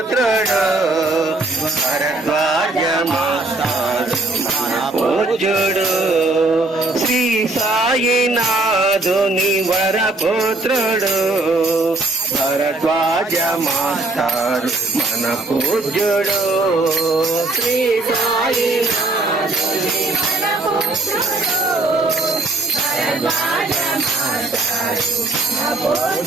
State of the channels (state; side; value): quieter; left; 3.0 dB